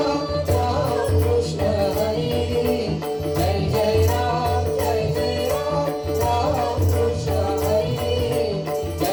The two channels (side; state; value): both; identical; correlation 1.00